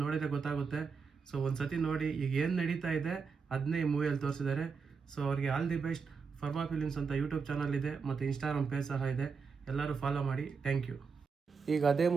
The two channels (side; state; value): left; quieter; 5.4 dB